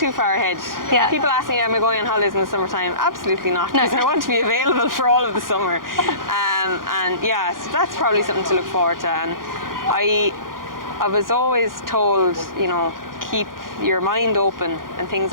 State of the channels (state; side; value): late; left; 0.90 ms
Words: far ahead. Yeah. People ask me, am I going on holidays in the summertime? Absolutely not, because I want to be available for all of the summer. And yeah, so that's probably something to look forward to. And I was always told, keep your mind open and things